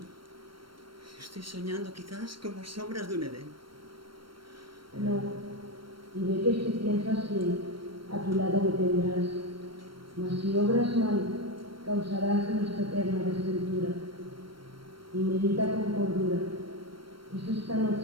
Estoy soñando quizás con las sombras de un Edén. No, y ve que si piensas bien, a tu lado me tendrás. Mas si obras mal, causarás nuestra eterna desventura. Y medita con cordura. Es esta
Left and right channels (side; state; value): left; late; 0.73 ms